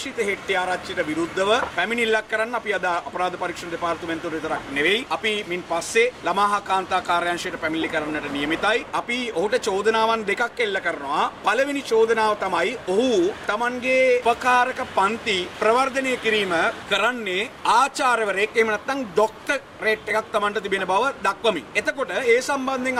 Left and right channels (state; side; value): identical; both; correlation 1.00